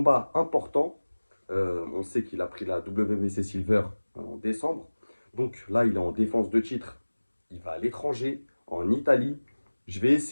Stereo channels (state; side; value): inverted; both; correlation -1.00